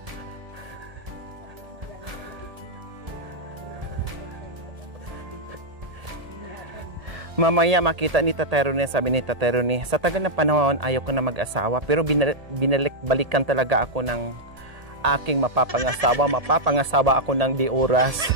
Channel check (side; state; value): left; late; 1.8 ms